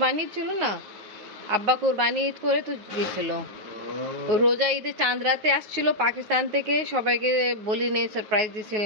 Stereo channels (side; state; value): left; late; 9.5 ms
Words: ছিল না, আব্বা কুরবানি ঈদ করে তো গিয়েছিল। রোজা ঈদে চাঁদ রাতে আসছিল পাকিস্তান থেকে, সবাইকে বলি নেই, সারপ্রাইজ